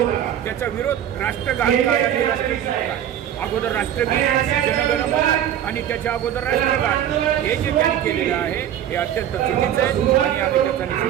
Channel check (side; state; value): left; quieter; 10.6 dB